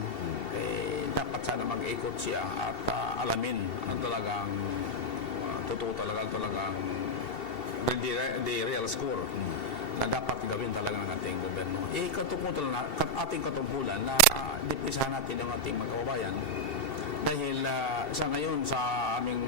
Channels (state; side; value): late; right; 2.7 ms